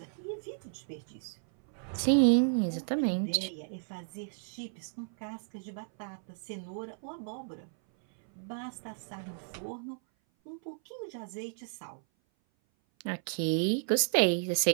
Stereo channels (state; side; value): silent; left; 56 dB below the other